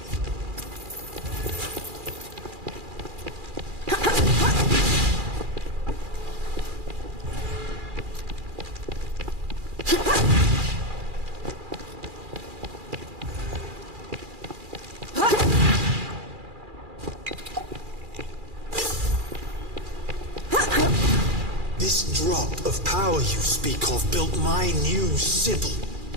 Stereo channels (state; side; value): late; left; 2.4 ms